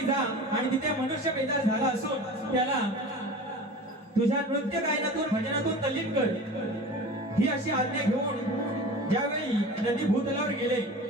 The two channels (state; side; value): normal; both; correlation 0.36